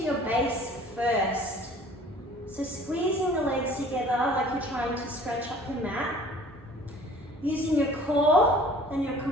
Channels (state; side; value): normal; both; correlation 0.50